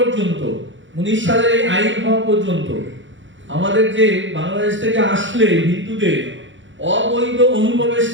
19 সালের এই আইন হওয়া পর্যন্ত আমাদের যে বাংলাদেশ থেকে আসলে হিন্দুদের অবৈধ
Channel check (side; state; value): left; late; 0.55 ms